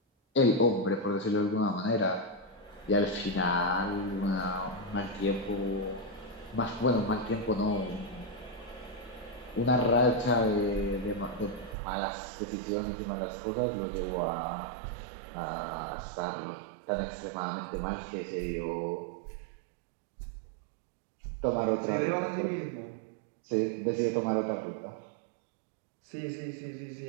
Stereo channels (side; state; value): left; drops out; at 11.8 s